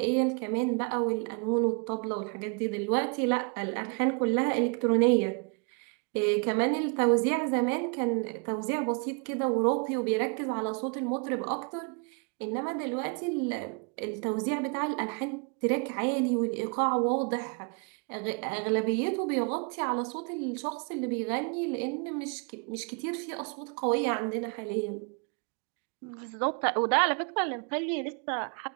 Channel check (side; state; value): left; quieter; 36.3 dB